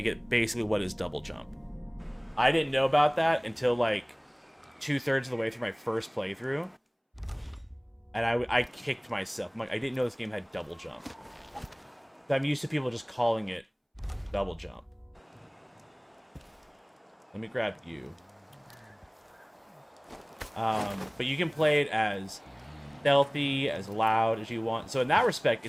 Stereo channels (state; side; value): identical; both; correlation 1.00